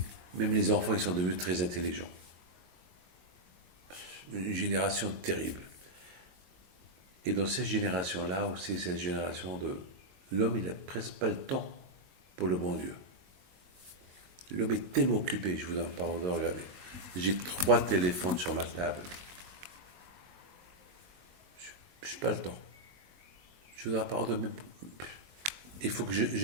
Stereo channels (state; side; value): late; left; 22 ms